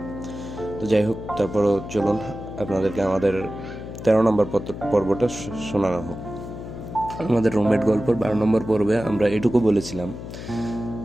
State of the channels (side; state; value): left; noise; hum, 10 dB below the sound